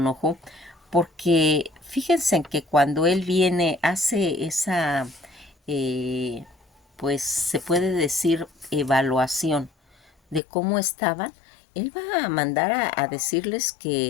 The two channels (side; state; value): right; drops out; at 10.4 s